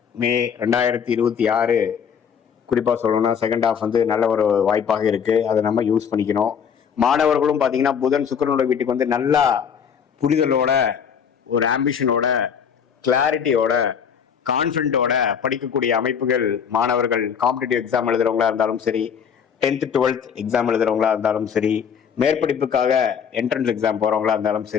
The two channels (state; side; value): quieter; right; 7.4 dB